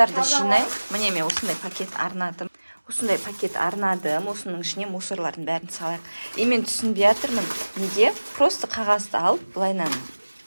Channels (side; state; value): both; inverted; correlation -1.00